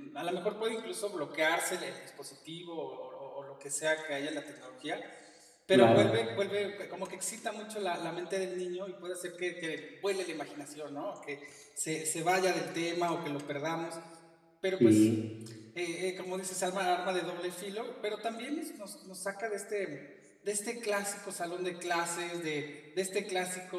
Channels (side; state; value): both; identical; correlation 1.00